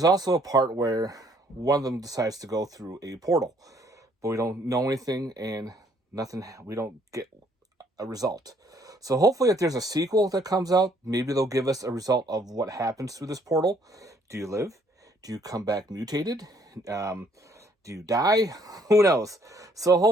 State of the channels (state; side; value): normal; both; correlation 0.65